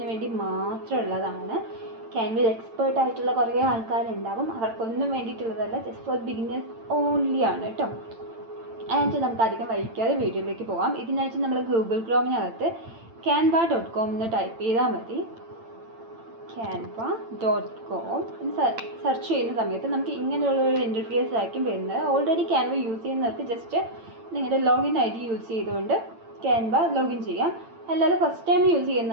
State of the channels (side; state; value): left; late; 8.9 ms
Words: വേണ്ടി മാത്രമുള്ളതാണ്. ക്യാൻവയിൽ എക്സ്പേർട്ട് ആയിട്ടുള്ള കുറേ ആൾക്കാരുണ്ടാവും, അവർക്കൊന്നും വേണ്ടിയിട്ടുള്ളതല്ല, ജസ്റ്റ് ഫോർ ബിഗിനേഴ്സ് ഓൺലി ആണ് കേട്ടോ. ആൻഡ് നമുക്ക് അധികം വൈകാതെ വീഡിയോയിലേക്ക് പോകാം. ഇതിനായിട്ട് നമ്മൾ ഗൂഗിൾ ക്രോമിനകത്ത് canva.com എന്ന് ടൈപ്പ് ചെയ്താൽ മതി. canva.com സെർച്ച് ചെയ്യുന്ന സമയത്ത് നമുക്ക് ഇങ്ങനെയുള്ളൊരു ഇൻ്റർഫേസ് ആയിരിക്കും വരുന്നത്. ഓൾറെഡി ക്യാൻവ യൂസ് ചെയ്യുന്നവർക്ക് ജസ്റ്റ് നിങ്ങളുടെ ലോഗിൻ ID യൂസ് ചെയ്തുകൊണ്ട് ക്യാൻവ ലോഗിൻ ചെയ്യാം. അല്ലാതെ ഫസ്റ്റ് ടൈം യൂസ്